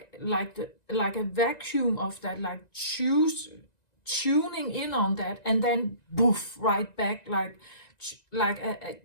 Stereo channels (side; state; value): right; late; 1.9 ms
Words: a vacuum of that, like tuning in on that, and then boof, right back,